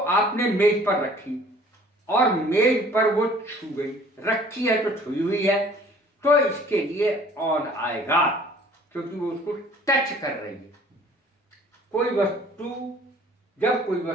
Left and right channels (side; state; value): both; normal; correlation 0.52